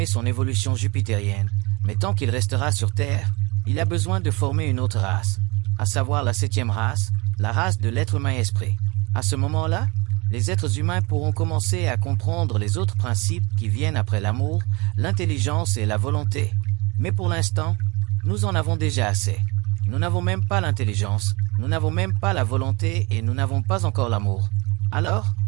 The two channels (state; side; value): quieter; left; 26.3 dB